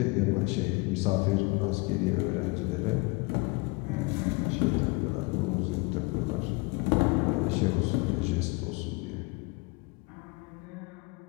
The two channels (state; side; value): quieter; right; 27.0 dB